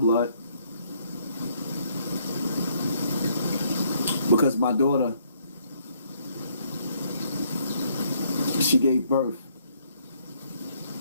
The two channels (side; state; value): both; inverted; correlation -0.68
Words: Because my daughter, she gave birth